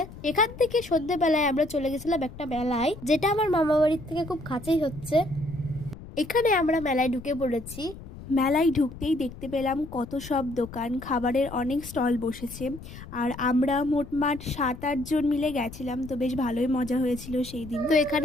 এখান থেকে সন্ধ্যেবেলায় আমরা চলে গেছিলাম একটা মেলায়, যেটা আমার মামা বাড়ির থেকে খুব কাছেই হচ্ছে। এখানে আমরা মেলায় ঢুকে পড়েছি। মেলায় ঢুকতেই দেখতে পেলাম কত সব দোকান, খাবারের অনেক স্টল বসেছে। আর আমরা মোটমাট 7-8 জন মিলে গেছিলাম, তো বেশ ভালোই মজা হয়েছিল সেই দিন। তো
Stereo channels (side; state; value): left; noise; rumble, 15 dB below the sound